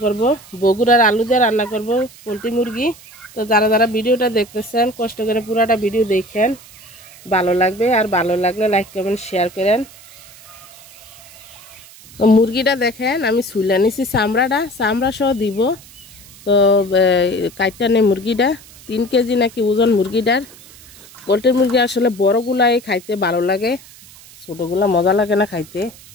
করব, বগুড়ার আলু দিয়ে রান্না করব পোলট্রি মুরগি। তো যারা যারা ভিডিওটা দেখতেছেন কষ্ট করে পুরাটা ভিডিও দেখেন, ভালো লাগবে। আর ভালো লাগলে লাইক কমেন্ট শেয়ার করেন। তো মুরগিটা দেখেন আমি ছুলে নিছি, চামড়া সহ দিব। তো কাইটটা নেই মুরগিটা, 3 কেজি নাকি ওজন মুরগিটার। পোলট্রি মুরগি আসলে বড়গুলাই খাইতে ভালো লাগে, ছোটগুলা মজা লাগে না খাইতে।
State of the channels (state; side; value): noise; right; hiss, 21 dB below the sound